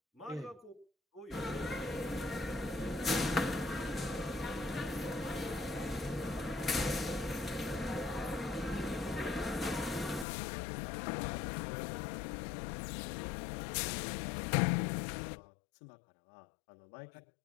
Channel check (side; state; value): right; drops out; at 10.2 s